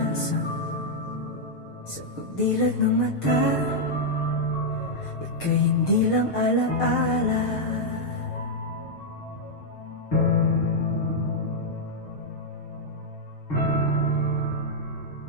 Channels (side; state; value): right; late; 6.5 ms